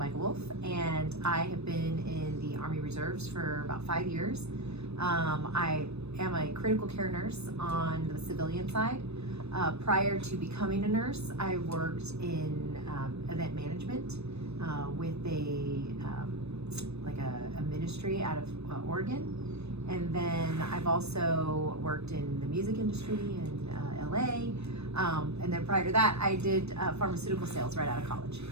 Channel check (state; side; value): late; left; 0.80 ms